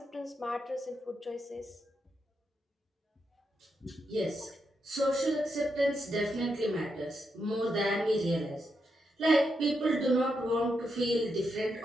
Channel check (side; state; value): both; normal; correlation 0.83